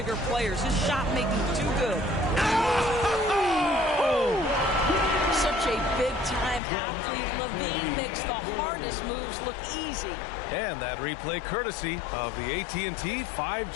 players. His shot making too good. Oh! Such a big-time athlete. LaVine makes the hardest moves look easy. And that replay courtesy of the AT&T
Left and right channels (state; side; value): drops out; right; at 6.6 s